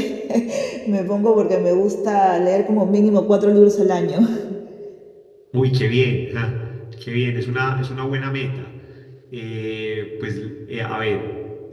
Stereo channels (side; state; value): both; identical; correlation 1.00